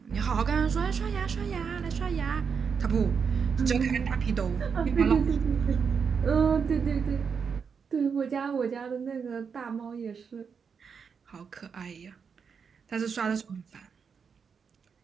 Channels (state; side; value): quieter; left; 6.2 dB